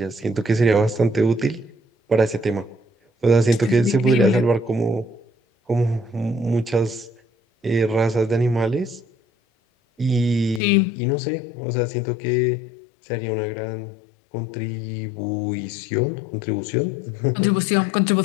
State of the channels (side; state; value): right; drops out; at 10.6 s